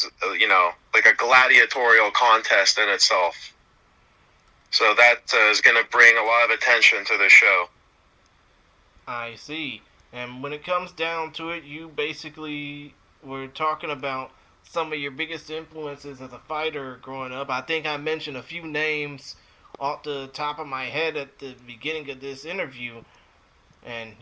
like a gladiatorial contest in itself. So that is going to bring a lot of attention to the show. I see. And when it comes down to it, you basically were talking about some of your biggest influences as a fighter growing up. I think I mentioned a few names off the top of my head at the beginning of this interview, and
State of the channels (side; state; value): both; identical; correlation 1.00